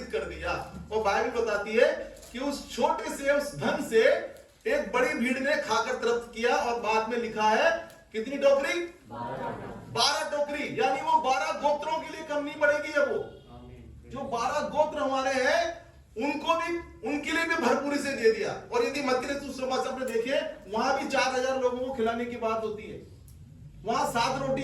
कर दिया। और बाइबल बताती है कि उस छोटे से, उस धन से एक बड़ी भीड़ ने खाकर तृप्त किया। और बाद में लिखा है कितनी टोकरी? 12 टोकरी। यानी वो 12 गोत्रों के लिए कम नहीं पड़ेगी। अब वो जो 12 गोत्र हमारे हैं, उनको भी, उनके लिए भी भरपूरी से दे दिया। और यदि मत्ती रचित सुसमाचार में देखिए, वहां भी 4000 लोगों को खिलाने की बात होती है। वहां 7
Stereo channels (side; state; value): both; identical; correlation 1.00